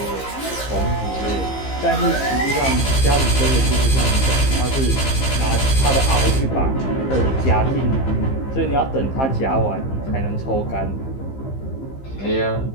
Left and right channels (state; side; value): late; right; 15 ms